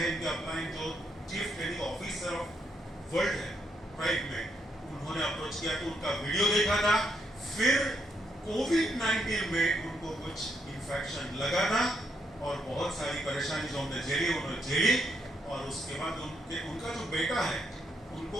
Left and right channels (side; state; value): both; normal; correlation 0.76